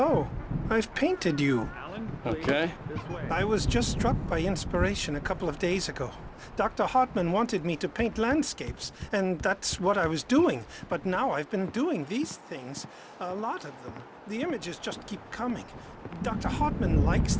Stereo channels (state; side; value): identical; both; correlation 1.00